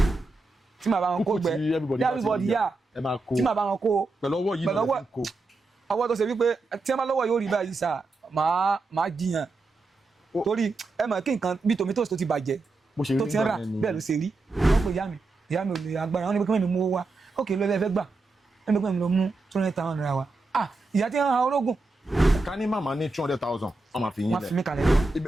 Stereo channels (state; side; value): quieter; left; 3.4 dB